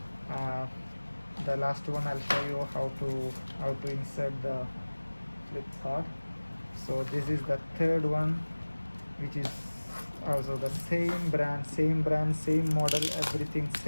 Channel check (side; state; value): both; inverted; correlation -1.00